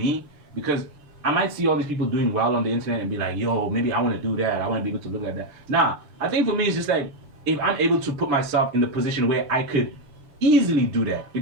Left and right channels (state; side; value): late; left; 6.6 ms